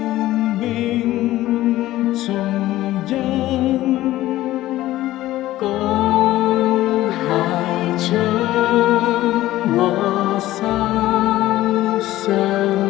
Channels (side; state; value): right; quieter; 15.5 dB